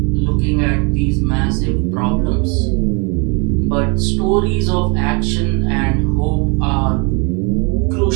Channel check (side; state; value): left; quieter; 32.8 dB